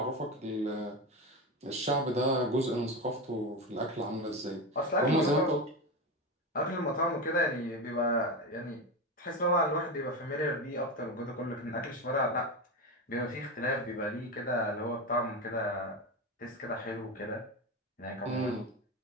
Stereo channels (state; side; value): normal; both; correlation 0.18